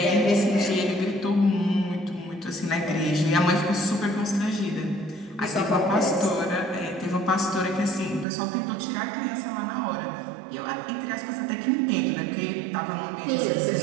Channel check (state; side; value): drops out; left; at 8.2 s